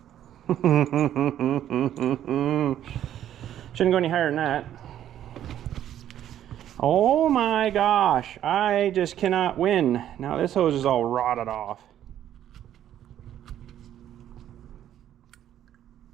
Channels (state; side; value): quieter; left; 11.2 dB